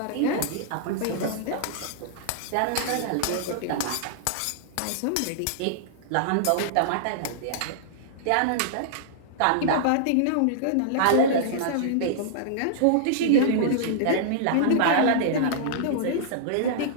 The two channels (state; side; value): different; both; correlation -0.02